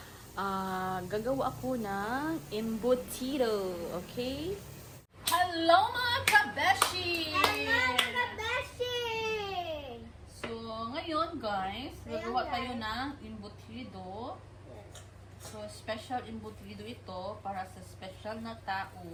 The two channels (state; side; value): identical; both; correlation 1.00